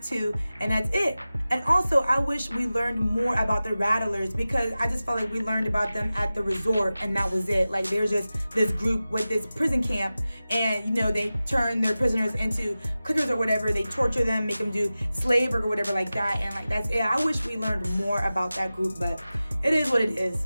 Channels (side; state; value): both; inverted; correlation -0.96